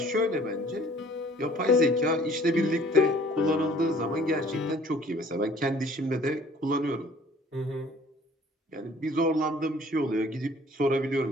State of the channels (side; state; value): both; normal; correlation 0.54